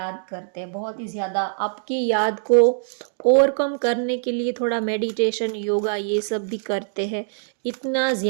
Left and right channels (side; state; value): left; silent; digital silence